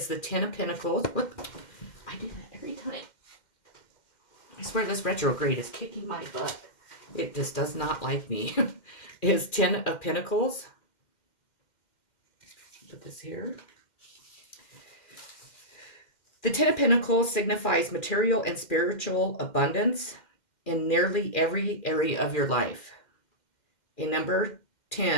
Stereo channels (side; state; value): right; late; 2.1 ms